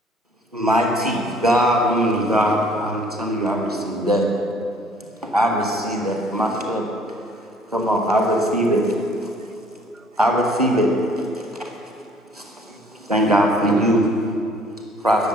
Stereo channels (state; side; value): normal; both; correlation 0.57